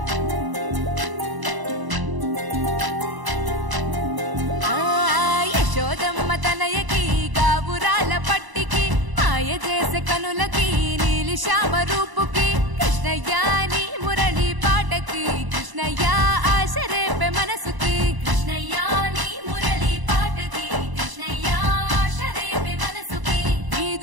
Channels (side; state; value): left; late; 1.0 ms